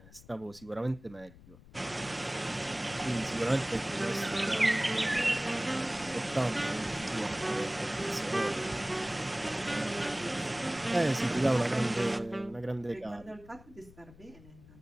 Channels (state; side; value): noise; left; rumble, 21 dB below the sound